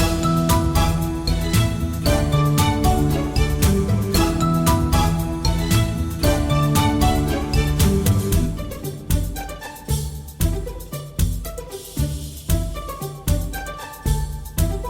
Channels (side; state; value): both; identical; correlation 1.00